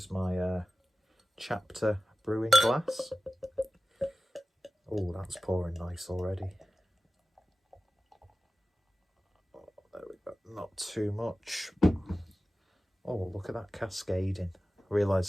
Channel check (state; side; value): normal; both; correlation 0.96